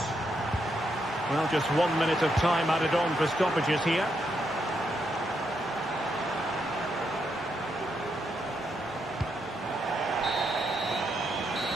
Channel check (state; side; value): normal; both; correlation 0.80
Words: Well, just 1 minute of time added on for stoppages here.